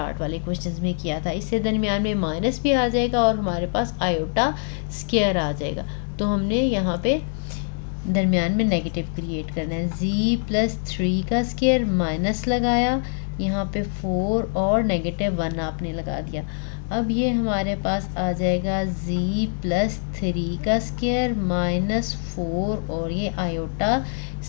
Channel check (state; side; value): silent; right; digital silence